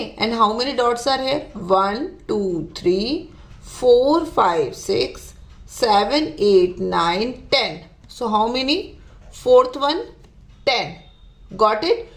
and how many dots are here? 1, 2, 3, 4, 5, 6, 7, 8, 9, 10. So how many? Fourth one, 10. Got it?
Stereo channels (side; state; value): both; identical; correlation 1.00